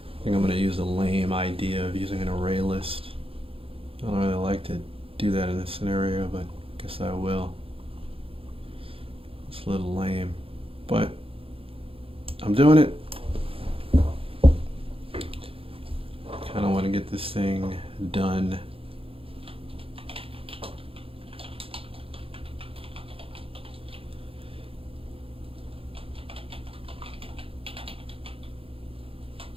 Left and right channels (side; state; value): left; late; 0.27 ms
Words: I think I'm going to use a lame idea of using an array list. I don't really like to do that in this scenario, but I guess I will. It's a little lame, but I'm doing it. Kind of want to get this thing done.